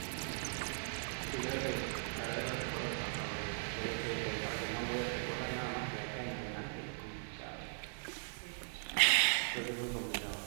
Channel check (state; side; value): silent; left; 52 dB below the other